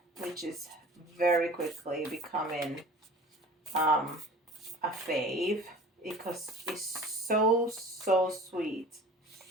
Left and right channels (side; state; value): both; normal; correlation 0.43